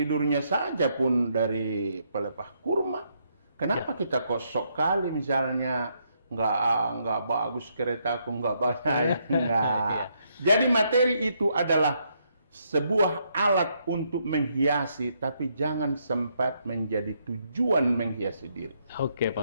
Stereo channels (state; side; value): inverted; both; correlation -0.75